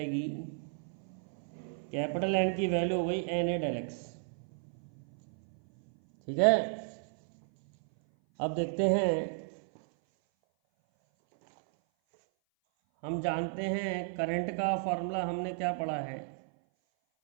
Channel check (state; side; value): silent; left; 56 dB below the other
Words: कैपिटल एन की वैल्यू हो गई एन ए डेल एक्स. ठीक है. अब देखते हैं, हम जानते हैं करंट का फॉर्मूला हमने क्या पढ़ा है.